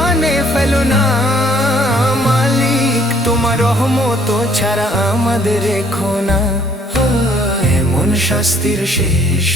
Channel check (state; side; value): normal; both; correlation 0.62